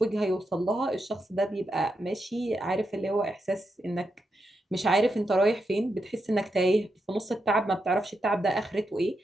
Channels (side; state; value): both; normal; correlation 0.85